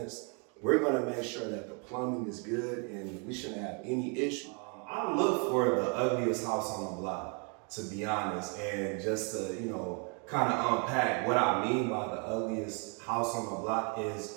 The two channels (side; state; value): left; quieter; 36.7 dB